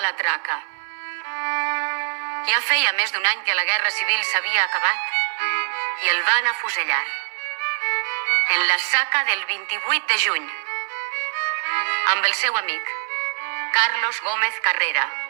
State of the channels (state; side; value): silent; left; digital silence